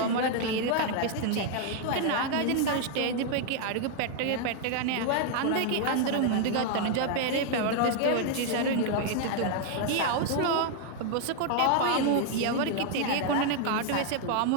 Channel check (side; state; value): both; different; correlation 0.00